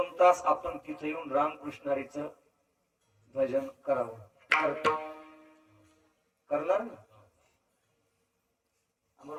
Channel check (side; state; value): both; identical; correlation 1.00